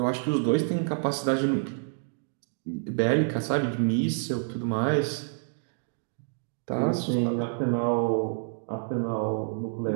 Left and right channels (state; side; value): silent; left; digital silence